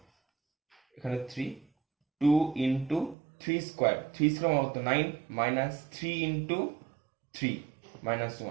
এখানে 3 2 ইন্টু 3 স্কোয়ার, 3 স্কোয়ার মানে কত 9 মাইনাস 3 ইন্টু 3 মাইনাস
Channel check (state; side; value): drops out; left; at 3.2 s